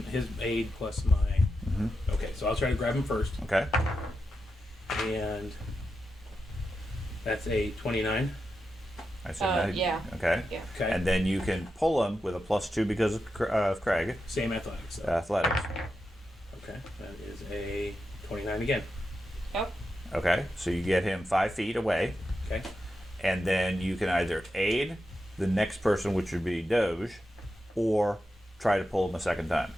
His aid plus my. Mhm. Okay, so I'll try to grab him first, Okay. and that's a 29. I said that. Yeah. Okay. Yeah. Okay. And then you can pull him with a +2 because of Craig. Same athletics. Though. Athletics. Okay, that is a 29 again. Yep. Okay. So you get him 5 feet away. Okay. And then you can either aid the next person, which would be Doge, or try to pull him a second time.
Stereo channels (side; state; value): both; normal; correlation 0.88